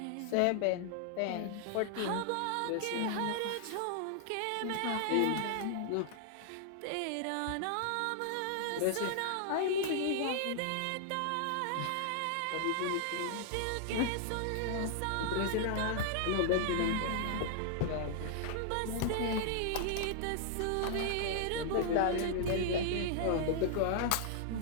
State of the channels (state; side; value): different; both; correlation -0.01